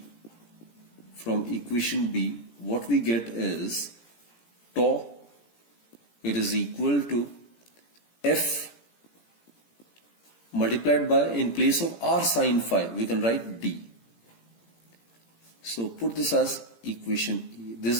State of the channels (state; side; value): late; right; 17 ms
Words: equation B, what we get is tau, it is equal to F multiplied by, in place of r sine phi, we can write d. So put this as equation E.